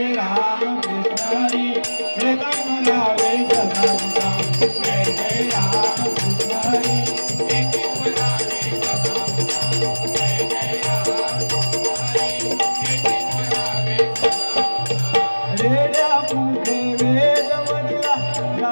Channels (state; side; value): inverted; both; correlation -1.00